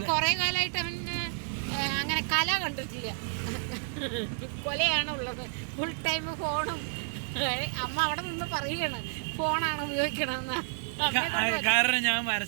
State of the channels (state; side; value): silent; left; 58 dB below the other